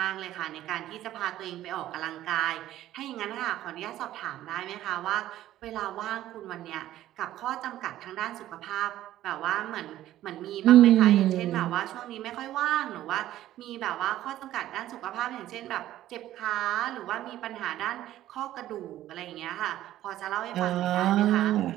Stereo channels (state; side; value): quieter; left; 13.6 dB